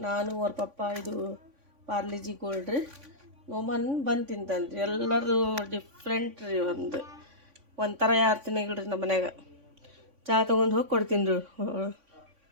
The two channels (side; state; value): left; late; 3.5 ms